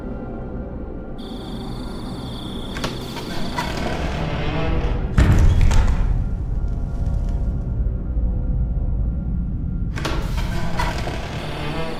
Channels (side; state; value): both; identical; correlation 1.00